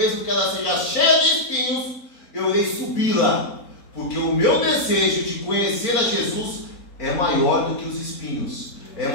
que ela seja cheia de espinhos, eu irei subi-la. Porque o meu desejo de conhecer a Jesus é maior do que os espinhos, é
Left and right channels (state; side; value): late; right; 4.0 ms